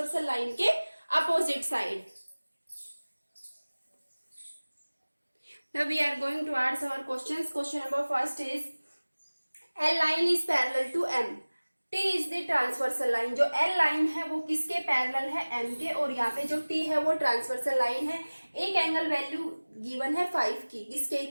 लाइन के opposite side. Now we are going to answer our questions. Question number first is L line is parallel to M. T is the transversal line. जो L line है वो किसके parallel है, M के, और यहाँ पे जो T है वो ट्रांसवर्सल लाइन है। एक एंगल वैल्यू गिवन है 5 की, इसके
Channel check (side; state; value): both; inverted; correlation -1.00